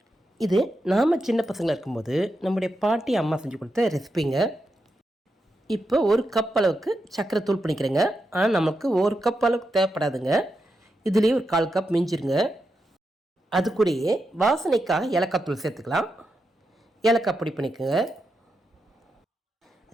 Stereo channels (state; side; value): normal; both; correlation 0.86